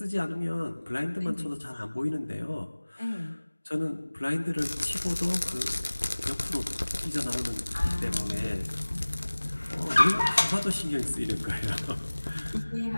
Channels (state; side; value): inverted; both; correlation -1.00